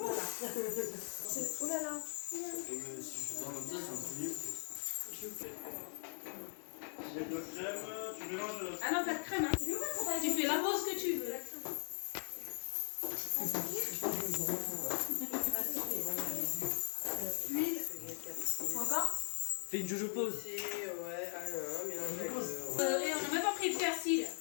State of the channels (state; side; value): silent; right; 51 dB below the other